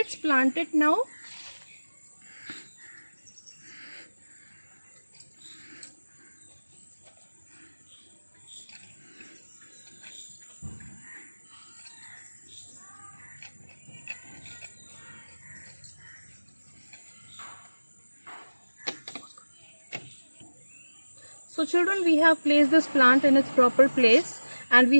plant it now. So children, we have placed this plant in its proper place, and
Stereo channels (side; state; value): both; inverted; correlation -1.00